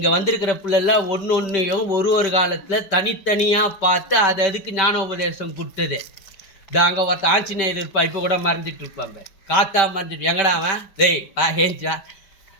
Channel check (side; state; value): right; late; 5.2 ms